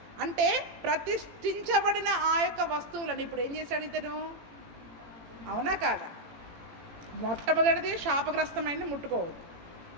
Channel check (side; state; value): left; late; 18 ms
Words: అంటే ప్రతిష్ఠించబడిన ఆ యొక్క వస్తువులను ఇప్పుడు ఏం చేశాడు ఇతను? అవునా కాదా? మొట్టమొదటిది శాపగ్రస్తమైనది ముట్టుకోవద్దు.